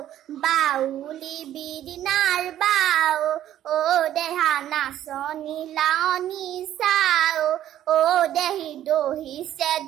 বাউলি বিৰিণাৰ বাও, অ দেহা নাচনি লাৱনি চাও, অ দেহি দহিছে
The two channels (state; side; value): quieter; left; 12.0 dB